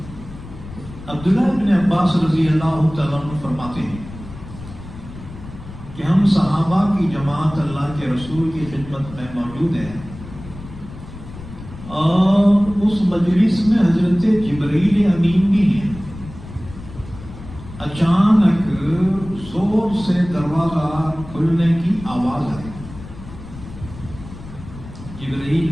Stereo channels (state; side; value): noise; left; rumble, 14 dB below the sound